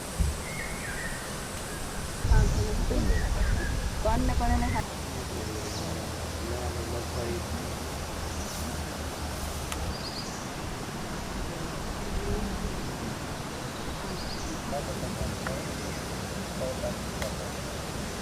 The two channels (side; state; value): both; identical; correlation 1.00